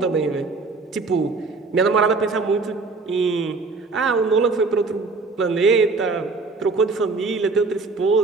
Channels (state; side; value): quieter; left; 4.0 dB